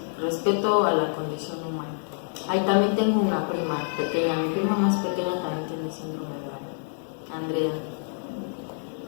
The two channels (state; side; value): silent; right; digital silence